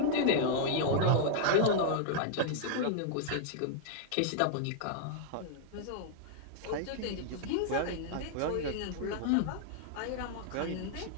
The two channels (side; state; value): both; different; correlation -0.01